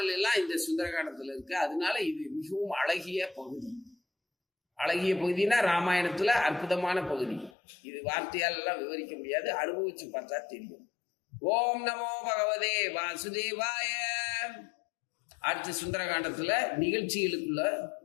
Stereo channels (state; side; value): drops out; right; at 7.6 s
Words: எல்லாம் இந்த சுந்தரகாண்டத்துல இருக்கு. அதனால இது மிகவும் அழகிய பகுதி. அழகிய பகுதினா ராமாயணத்துல அற்புதமான பகுதி. இது வார்த்தையால் எல்லாம் விவரிக்க முடியாது, அனுபவிச்சு பார்த்தா தெரியும். ஓம் நமோ பகவதே வாசுதேவாய. அடுத்த சுந்தரகாண்டத்துல நிகழ்ச்சிகளுக்குள்ள